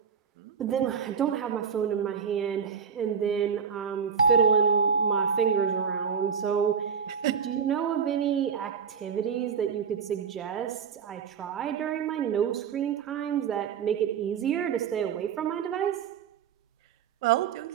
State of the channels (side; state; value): left; quieter; 6.8 dB